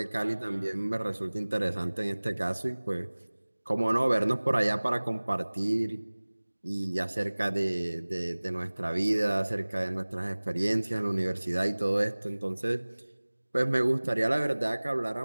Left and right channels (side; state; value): both; inverted; correlation -1.00